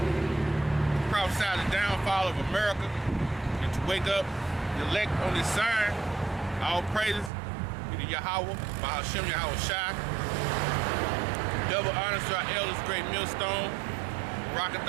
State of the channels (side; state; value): left; drops out; at 7.3 s